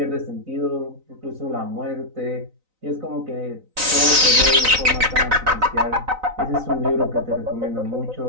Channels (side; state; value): left; late; 3.9 ms